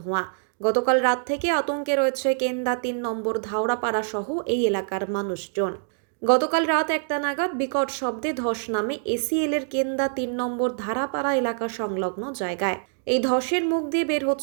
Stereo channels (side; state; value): left; silent; digital silence